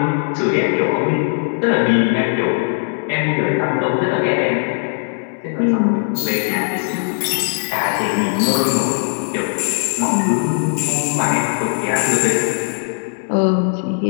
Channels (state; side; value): silent; right; 60 dB below the other